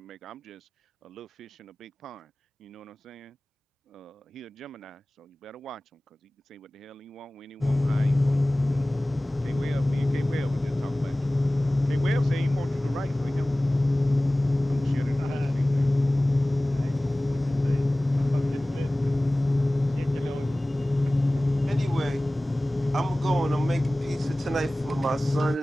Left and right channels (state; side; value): normal; both; correlation 0.98